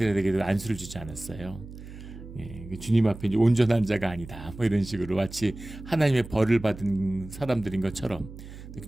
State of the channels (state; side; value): noise; right; hum, 14 dB below the sound